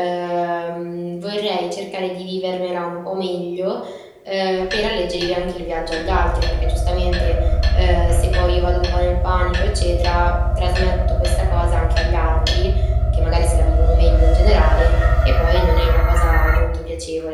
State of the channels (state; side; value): identical; both; correlation 1.00